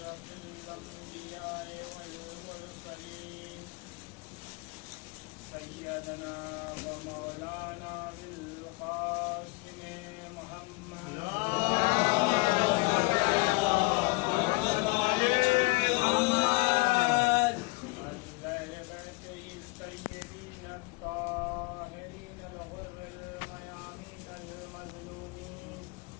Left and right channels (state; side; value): quieter; right; 26.7 dB